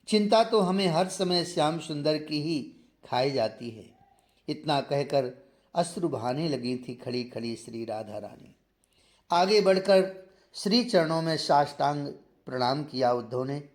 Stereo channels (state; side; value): identical; both; correlation 1.00